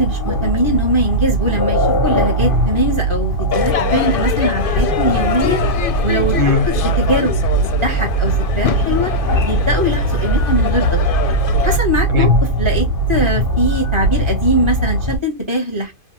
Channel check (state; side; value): late; left; 2.5 ms